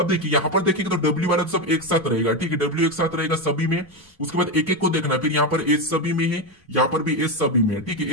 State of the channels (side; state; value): both; normal; correlation 0.12